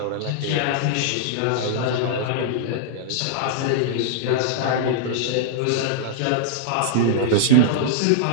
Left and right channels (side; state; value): both; different; correlation -0.01